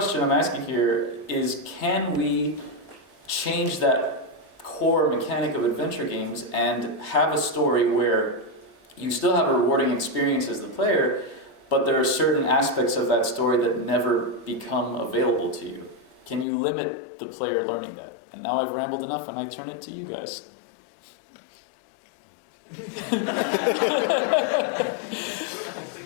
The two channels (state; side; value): drops out; right; at 16.4 s